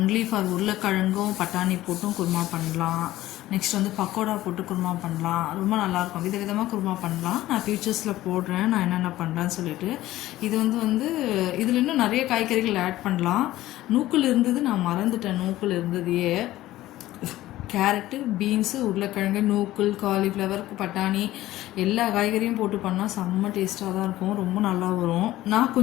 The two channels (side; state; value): right; quieter; 15.6 dB